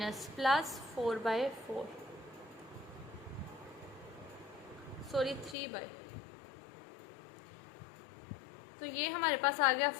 प्लस 4/4, सॉरी 3/, तो ये हमारे पास आ गया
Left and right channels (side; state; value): right; drops out; at 5.6 s